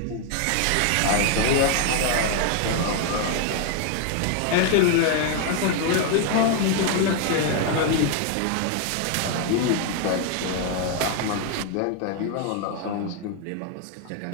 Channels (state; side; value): different; both; correlation 0.00